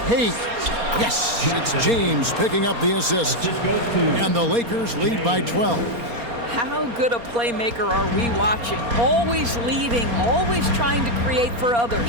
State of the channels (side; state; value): left; late; 4.3 ms